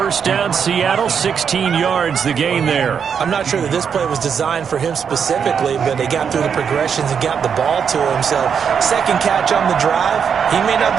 down, Seattle, 16 yards the gain there. I'm not sure that this play was designed for him specifically, but they got through the progressions and got the ball to him. So second catch on the drive. He may not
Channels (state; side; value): quieter; left; 7.1 dB